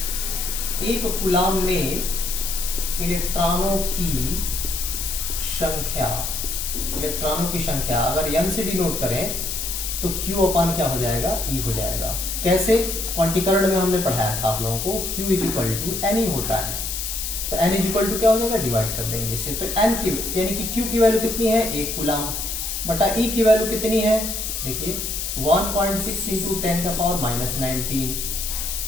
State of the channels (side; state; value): left; noise; hiss, 3 dB below the sound